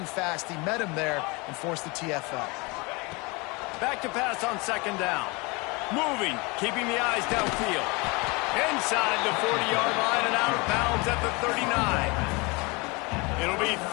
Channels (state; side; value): quieter; right; 27.0 dB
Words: fast. He met him there and forced the TFL. Back to pass on 2nd down. Moving, keeping the eyes downfield. Inside the 40-yard line and out of bounds at the 39. It'll be